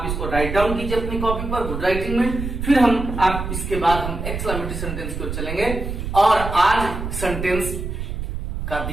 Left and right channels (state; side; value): noise; right; rumble, 5 dB below the sound